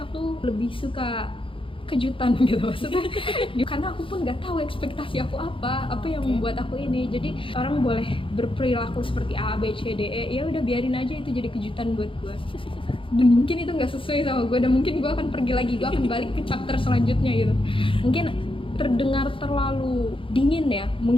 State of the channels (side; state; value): right; late; 0.25 ms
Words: lebih suka kejutan gitu maksudnya. Karena aku pun nggak tahu ekspektasi aku apa yang membuat aku ini. Jadi orang boleh berperilaku seperti A, B, C, D, E, ya udah biarin aja itu jadi kejutan buat gue. Dan mungkin itu nggak sesuai sama gue, dan mungkin gue akan pergi lagi, gue akan balik ke chapter selanjutnya gitu. Mungkin terdengar terlalu dingin ya.